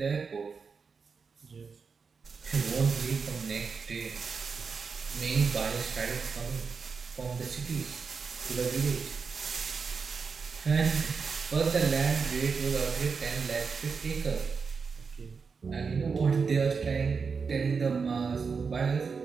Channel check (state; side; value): quieter; left; 5.3 dB